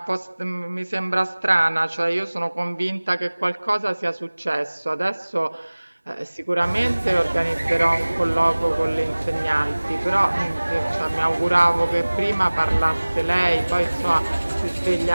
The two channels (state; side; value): inverted; both; correlation -1.00